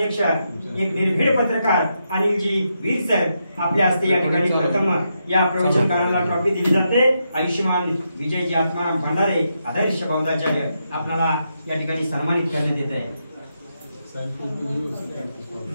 एक निर्भीड पत्रकार अनिलजी वीर सर आपल्या हस्ते या ठिकाणी प्रथम या प्रवचनकाराला ट्रॉफी दिली जाते. आयुष्यमान विजयजी आत्माराम भंडारे आदर्श बौद्धाचार्य आपल्याला या ठिकाणी सन्मानित करण्यात येत आहे.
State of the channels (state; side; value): inverted; both; correlation -0.83